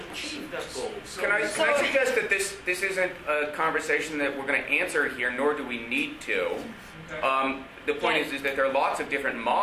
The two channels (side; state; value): both; identical; correlation 1.00